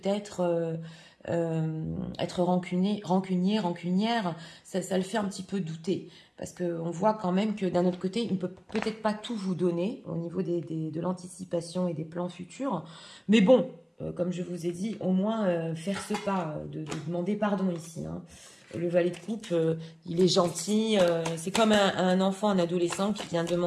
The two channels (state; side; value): identical; both; correlation 1.00